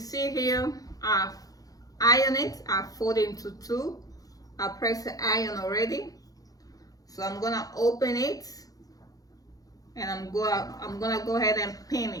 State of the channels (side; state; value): right; late; 0.17 ms